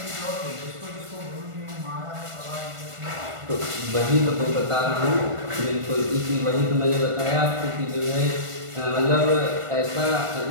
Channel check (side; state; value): left; late; 1.4 ms